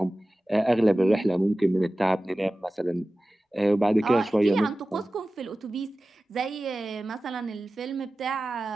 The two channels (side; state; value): both; normal; correlation 0.96